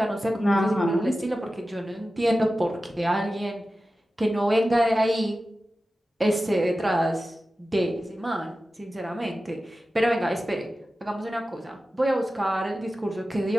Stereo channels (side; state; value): both; normal; correlation 0.94